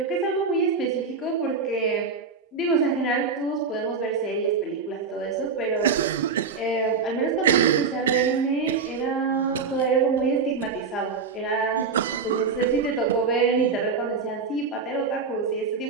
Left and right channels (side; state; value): left; quieter; 5.1 dB